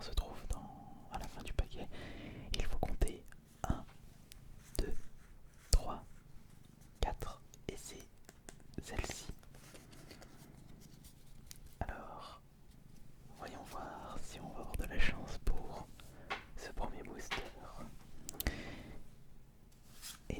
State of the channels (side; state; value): both; identical; correlation 1.00